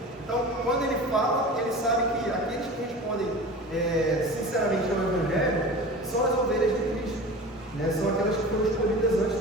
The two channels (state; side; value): normal; both; correlation 0.35